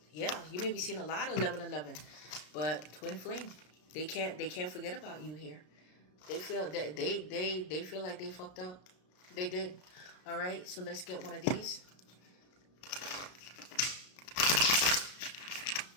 yeah. You may be seeing a lot of 1111, but twin flame, they can't forget about you here. They feel that they feel like they fucked up. They did. All right, so let's get one of these.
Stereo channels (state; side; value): late; right; 33 ms